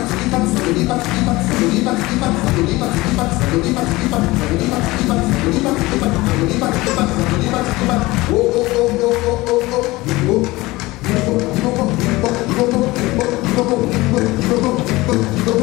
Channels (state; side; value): quieter; right; 20.4 dB